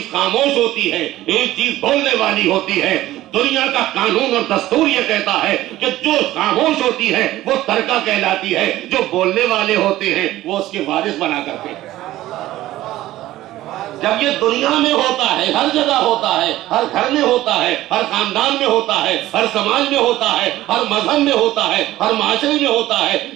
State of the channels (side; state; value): left; quieter; 15.4 dB